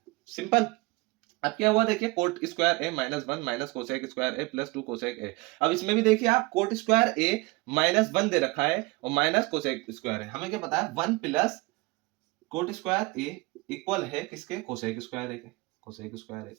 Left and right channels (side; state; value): left; quieter; 23.7 dB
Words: सिंपल। अब क्या हुआ देखिए, coat square A -1 minus cosec square A +2 cosec ए। अब इसमें भी देखिए आप, कोट स्क्वायर ए -1 दे रखा है और माइनस कोसेक स्क्वायर है, हमें क्या पता है 1 plus cot square A equal है किसके, कोसेक स्क्वायर ए के, कोसेक स्क्वायर ए